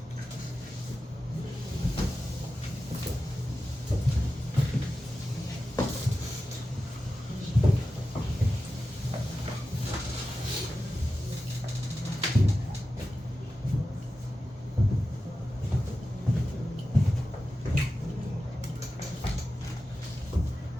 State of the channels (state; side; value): normal; both; correlation 0.93